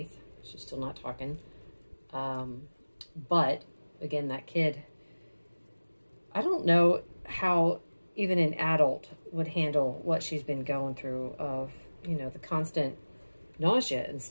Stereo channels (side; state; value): both; inverted; correlation -1.00